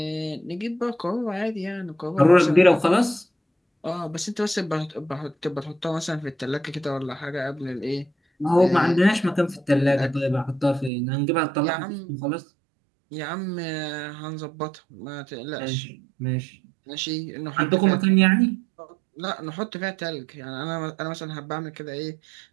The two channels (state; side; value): drops out; left; at 10.9 s